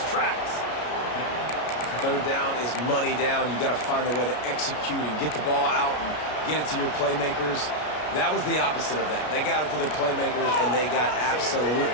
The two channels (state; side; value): late; right; 33 ms